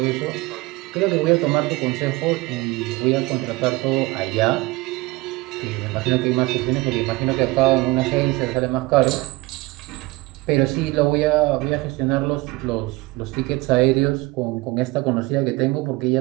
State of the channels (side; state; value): left; quieter; 21.7 dB